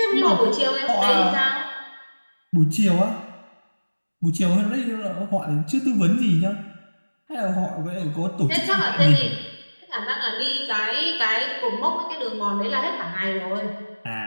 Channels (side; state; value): both; inverted; correlation -1.00